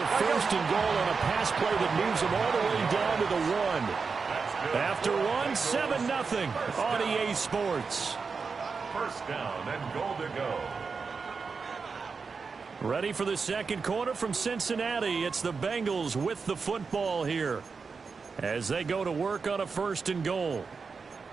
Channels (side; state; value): left; quieter; 5.0 dB